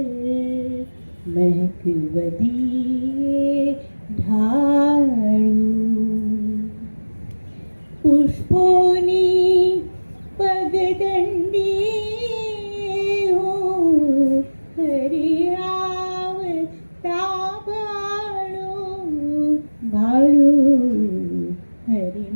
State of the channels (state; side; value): inverted; both; correlation -1.00